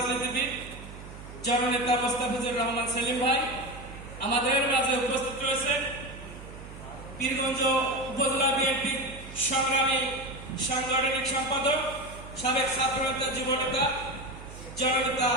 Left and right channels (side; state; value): right; noise; hum, 14 dB below the sound